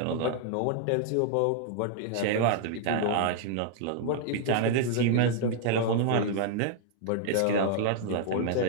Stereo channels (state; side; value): different; both; correlation -0.01